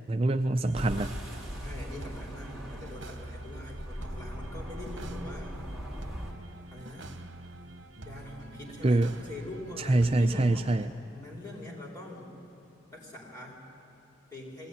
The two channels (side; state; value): both; normal; correlation 0.88